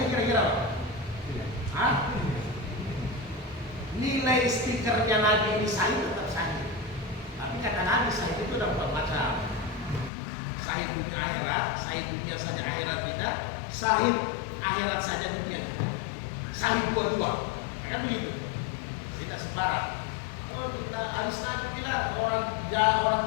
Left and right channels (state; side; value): drops out; right; at 10.1 s